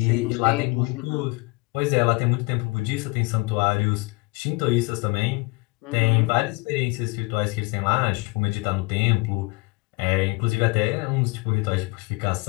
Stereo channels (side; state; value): right; quieter; 26.8 dB